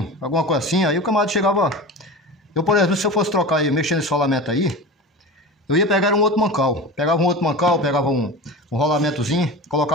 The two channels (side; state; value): both; normal; correlation 0.30